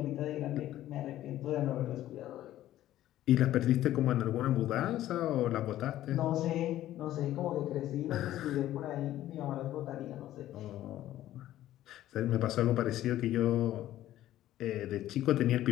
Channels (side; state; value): right; quieter; 13.6 dB